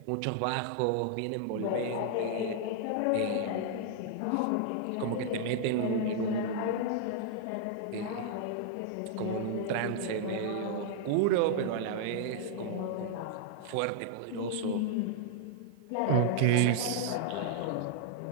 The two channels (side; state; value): both; different; correlation -0.01